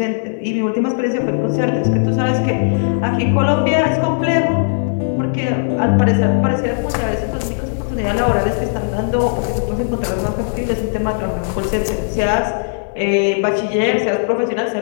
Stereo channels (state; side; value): silent; right; 58 dB below the other